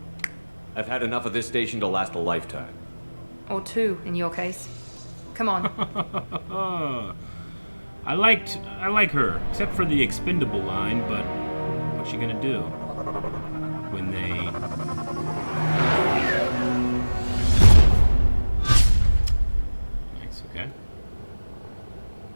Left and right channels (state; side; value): inverted; both; correlation -1.00